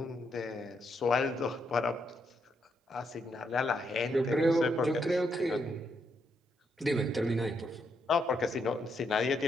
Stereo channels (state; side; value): normal; both; correlation 0.78